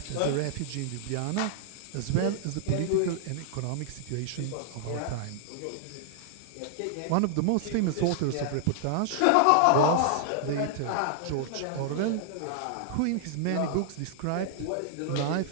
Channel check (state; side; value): different; both; correlation -0.01